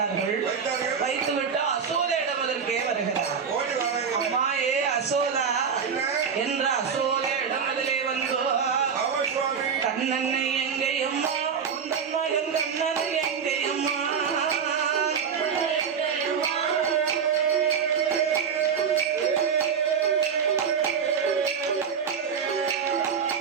வைத்துவிட்டு அசோத இடமதற்கே வருகிறார். அசோதா என்ற அசோதையிடம் அதிலே வந்து கண்ணனை எங்கையம்மா உந்தன் மகன் கண்ணனை எங்கையம்மா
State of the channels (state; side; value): quieter; left; 6.7 dB